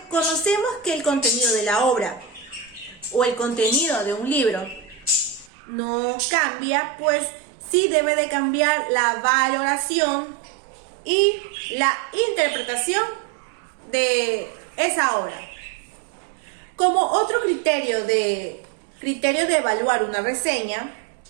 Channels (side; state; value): left; drops out; at 5.5 s